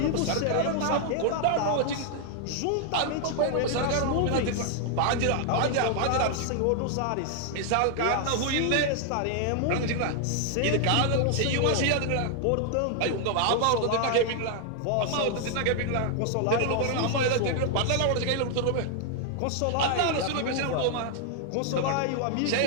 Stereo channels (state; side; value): different; both; correlation 0.00